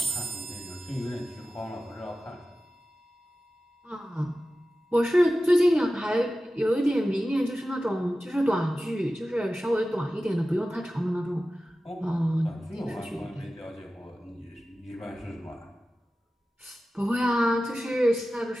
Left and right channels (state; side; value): normal; both; correlation 0.94